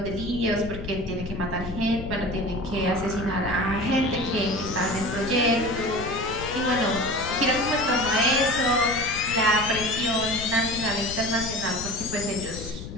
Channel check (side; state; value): left; noise; rumble, 10 dB below the sound